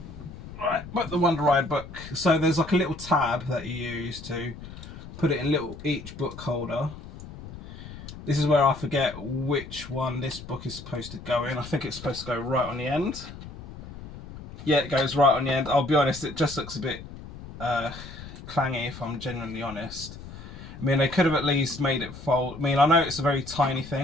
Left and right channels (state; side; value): noise; left; rumble, 14 dB below the sound